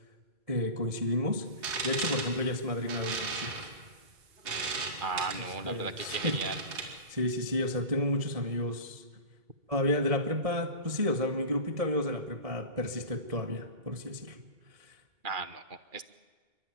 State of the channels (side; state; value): left; late; 1.7 ms